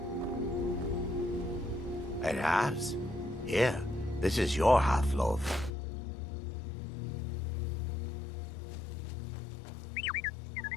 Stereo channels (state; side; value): drops out; right; at 5.7 s